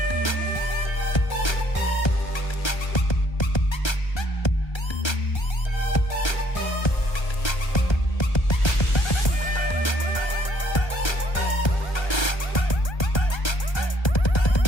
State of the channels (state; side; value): late; right; 1.3 ms